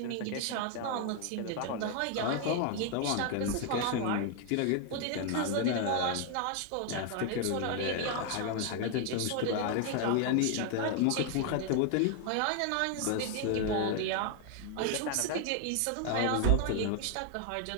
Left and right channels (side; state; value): both; different; correlation 0.00